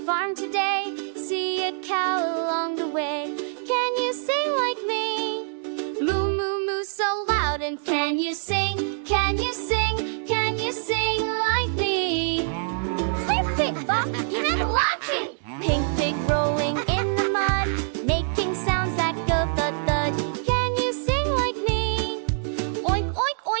today, see a cow along the way. Can you sing like me? Moo, moo, moo so loud. And can you sing? Can you sing? Can you sing like me? Flip, flip, bop, you're not watching. Pink pig rolling in the mud, making sounds that go thud, thud. Can you sing like me? Oink, oink,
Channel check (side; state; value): left; silent; digital silence